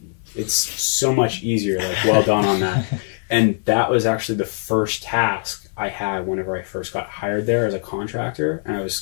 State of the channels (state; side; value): silent; right; 64 dB below the other